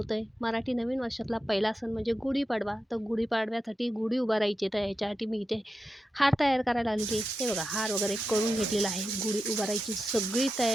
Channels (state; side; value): normal; both; correlation 0.90